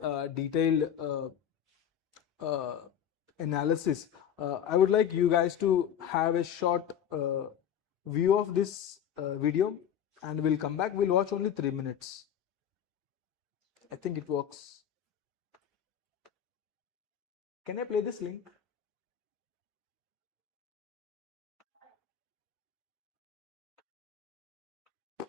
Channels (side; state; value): right; quieter; 9.2 dB